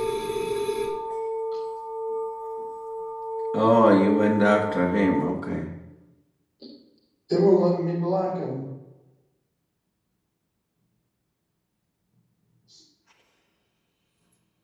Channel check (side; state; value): both; identical; correlation 1.00